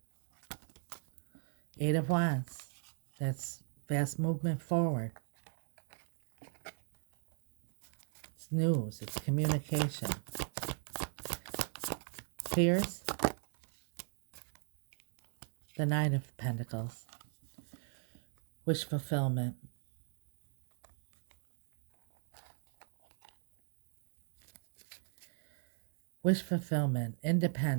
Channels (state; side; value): silent; left; 52 dB below the other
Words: Eight of Wands. That's fast movement forward. It's news. It's communication. Fears. The Nine of Pentacles. Wish fulfillment. Wish fulfillment,